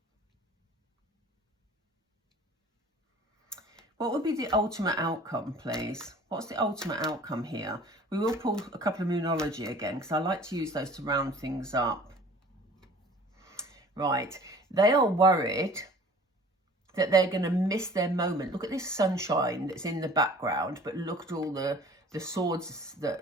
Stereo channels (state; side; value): normal; both; correlation 0.48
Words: What would be the ultimate outcome, please? What's the ultimate outcome here? We will pull a couple of Moonology again, because I like to use those to round things up. Right, they are worried that they're going to miss their moment. Look at this sunshine that's in the background, but look at all the swords